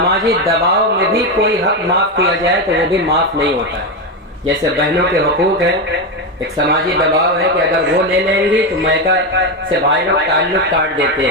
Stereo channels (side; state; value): both; normal; correlation 0.11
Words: دباؤ میں بھی کوئی حق معاف کیا جائے تو وہ بھی معاف نہیں ہوتا ہے۔ جیسے بہنوں کے حقوق ہیں، ایک سماجی دباؤ ہے کہ اگر وہ لے لیں گی تو میکا سے بھائی لوگ تعلق کاٹ دیتے